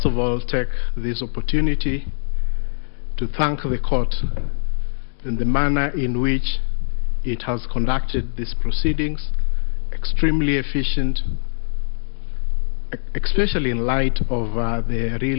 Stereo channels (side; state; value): right; silent; 56 dB below the other